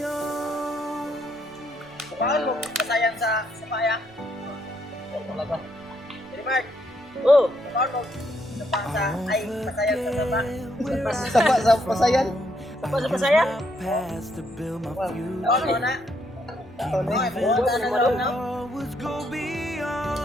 Paano mo kasayan sa paya? Talaga. Jadi Mark. Oh, paano mo sa ay kasayan sa baba? Sapa sa pasayan. Sapa sa pasayan? Past to build my future. Ano na? Always go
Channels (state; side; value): noise; right; rumble, 28 dB below the sound